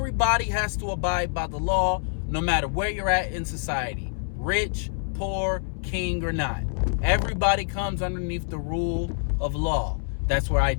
has to abide by the law, no matter where you're at in society. Rich, poor, king, or not. Everybody comes underneath the rule of law. That's where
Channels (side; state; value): right; silent; 61 dB below the other